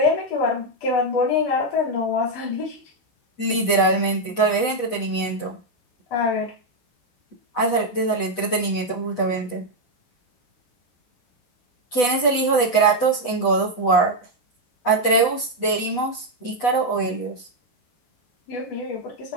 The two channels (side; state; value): right; late; 8.1 ms